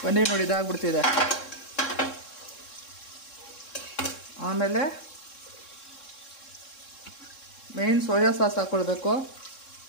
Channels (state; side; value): late; right; 3.7 ms